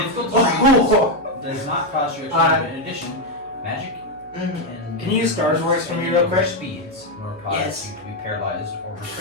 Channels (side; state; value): right; noise; hum, 28 dB below the sound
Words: difficult to read. Does not cost you extra. In addition, magic and Can you use Star's voice for me real quick? Speeds, nor cause Yes. you to be paralyzed or